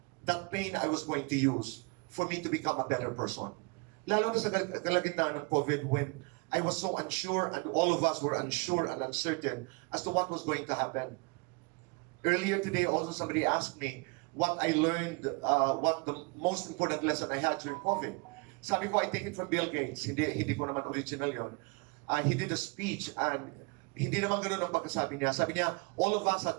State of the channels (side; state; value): left; quieter; 30.7 dB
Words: that pain I was going to use for me to become a better person. Lalo na sa kalagitnaan ng COVID when I was so unsure and all of us were unsure and uncertain as to what was going to happen. Earlier today also somebody asked me what I learned, what the most important lesson I had during COVID. Sabi ko, I take it from Bill Gates. Hindi ko naman original yon. He did a speech and hindi naman ganoon ang pagkasabi niya. Sabi niya, all of us had